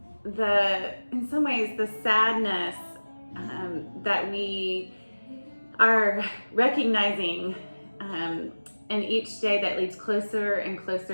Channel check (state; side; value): inverted; both; correlation -1.00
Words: some ways, the sadness that we are recognizing in each day that leads closer and